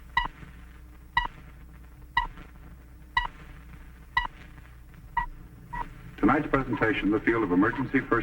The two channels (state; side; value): identical; both; correlation 1.00